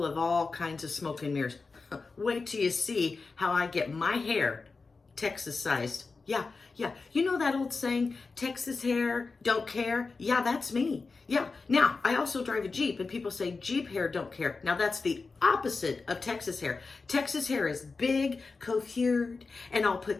of all kinds of smoke and mirrors. Wait till you see how I get my hair Texas sized. Yeah. You know that old saying, Texas hair, don't care? Yeah, that's me. Yeah. Now, I also drive a Jeep, and people say Jeep hair don't care. Now, that's the opposite of Texas hair. Texas hair is big, coiffured, and all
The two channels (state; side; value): quieter; right; 4.2 dB